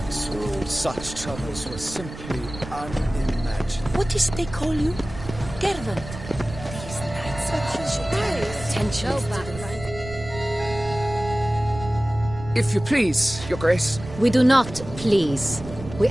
rule, such troubles were simply unimaginable. What is they call you? Gervant. These nights are potential. If you please, Your Grace. We do not please. We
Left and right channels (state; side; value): noise; right; rumble, 12 dB below the sound